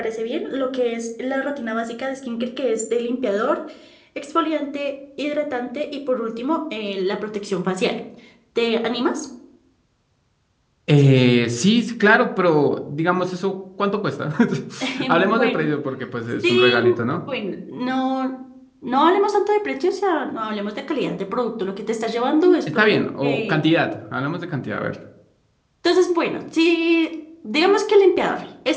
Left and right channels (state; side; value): identical; both; correlation 1.00